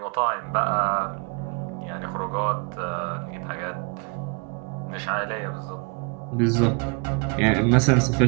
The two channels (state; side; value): quieter; left; 32.4 dB